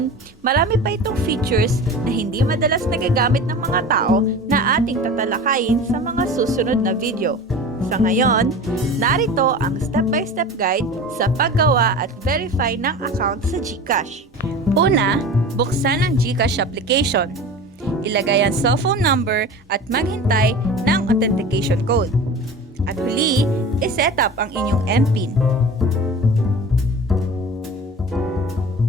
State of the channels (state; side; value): normal; both; correlation 0.35